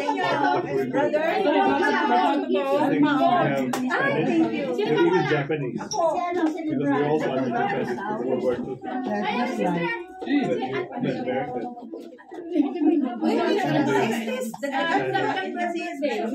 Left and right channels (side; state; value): both; identical; correlation 1.00